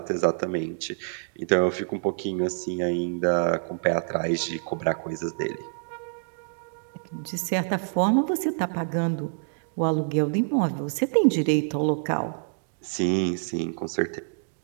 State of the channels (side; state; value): left; silent; digital silence